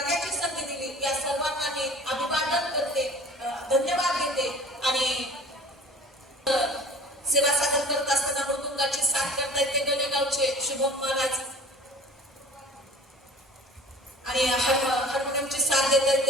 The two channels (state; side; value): normal; both; correlation 0.44